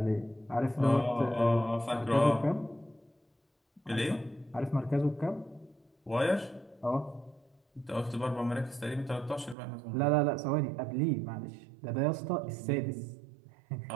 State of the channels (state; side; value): drops out; left; at 9.6 s